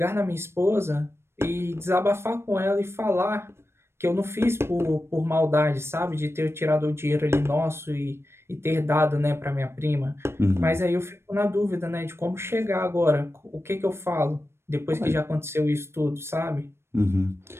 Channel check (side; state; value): left; late; 0.12 ms